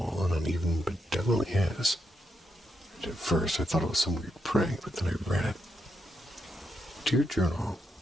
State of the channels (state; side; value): normal; both; correlation 0.82